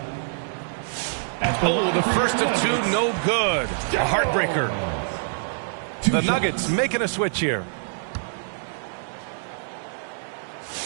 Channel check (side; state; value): left; silent; 62 dB below the other